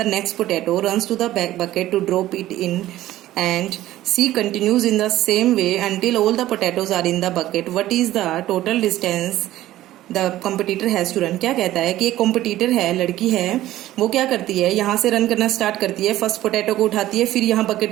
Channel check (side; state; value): left; quieter; 14.7 dB